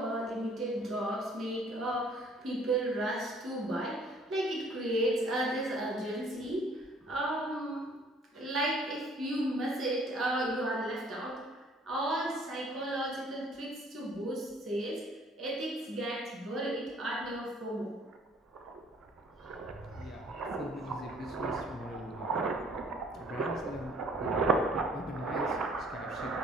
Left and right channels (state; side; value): normal; both; correlation 0.58